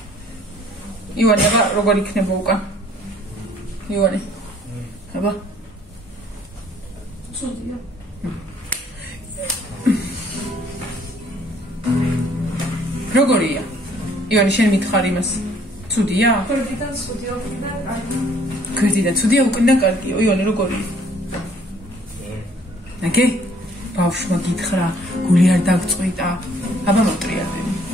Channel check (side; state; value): both; normal; correlation 0.60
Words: ივანე, როგორ იქნება უკან? ივანე. აბა. ცუდია. როგორია? ივანე, შენ მითხარ იმას. ცუდია? გვერდიდან ცუდია, უკიდან კარგი. გვერდიდან ცუდია, უკიდან კარგია. ივანე, როგორია? ნაგე? ბავშვმა გითხრა, გული არ დაგწყვიტა. აბა მოტრიალები.